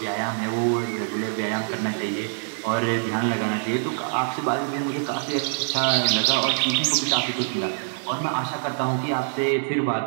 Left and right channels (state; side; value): silent; left; 62 dB below the other